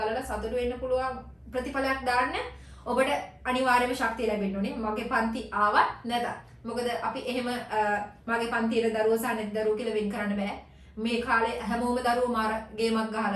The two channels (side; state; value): both; identical; correlation 1.00